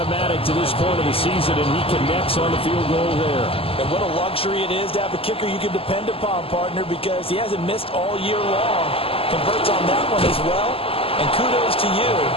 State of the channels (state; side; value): late; right; 0.27 ms